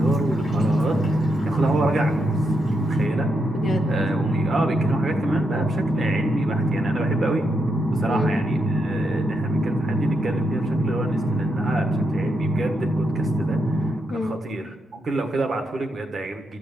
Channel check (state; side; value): normal; both; correlation 0.82